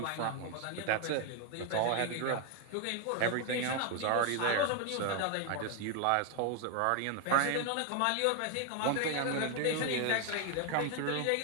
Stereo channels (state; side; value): different; both; correlation 0.01